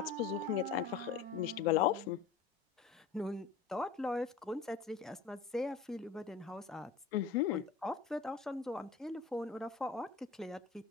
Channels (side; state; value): right; quieter; 5.8 dB